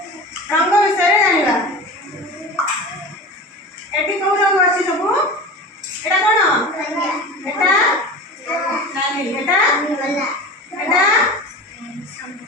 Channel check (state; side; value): normal; both; correlation 0.32